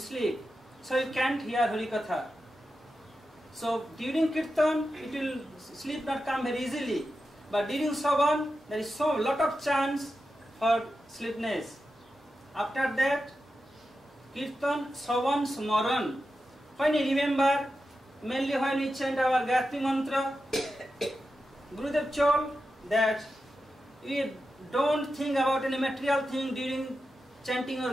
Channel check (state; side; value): normal; both; correlation 0.90